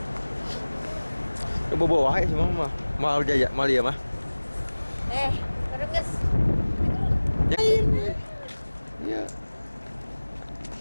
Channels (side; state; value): both; inverted; correlation -1.00